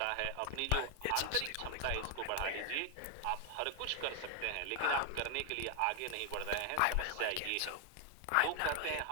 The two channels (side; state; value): both; different; correlation 0.00